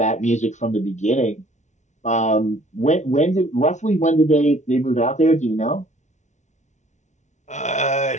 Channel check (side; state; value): right; late; 0.34 ms